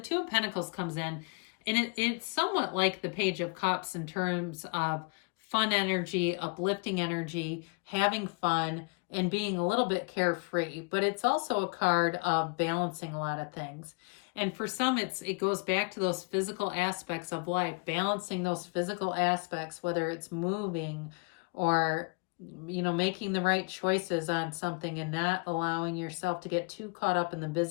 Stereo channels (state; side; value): quieter; right; 32.8 dB